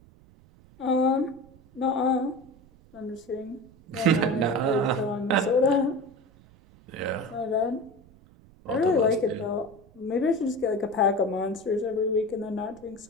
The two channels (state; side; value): noise; right; rumble, 26 dB below the sound